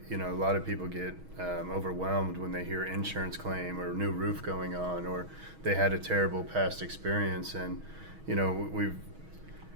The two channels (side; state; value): left; late; 6.3 ms